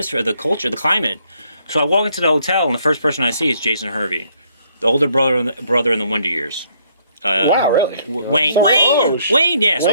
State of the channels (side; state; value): both; inverted; correlation -0.68